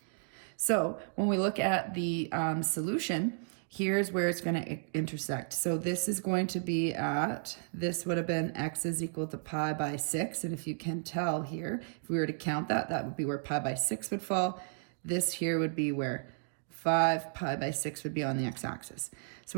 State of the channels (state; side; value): silent; left; digital silence